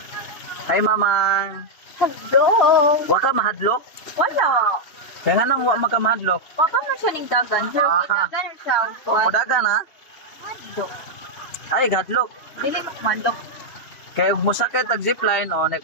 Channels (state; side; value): late; right; 3.2 ms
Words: Hi mamang. Hello. Wa ka mahadlok? Wala. Kaya nga nang wa maka mahadlok. Papa man siya ning dagan. Pero Ah. dagan siya. O dagan ha? Mandok. Ay hadlok. Dili mo mandok. Kaya ug mosakay tag zipline o na